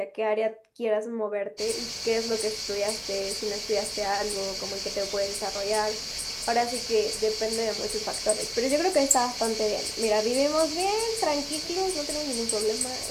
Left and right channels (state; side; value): identical; both; correlation 1.00